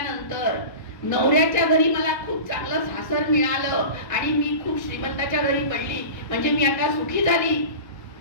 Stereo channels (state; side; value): late; right; 1.3 ms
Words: नवऱ्याच्या घरी मला खूप चांगलं सासर मिळालं आणि मी खूप श्रीमंताच्या घरी पडली म्हणजे मी आता सुखी झाली,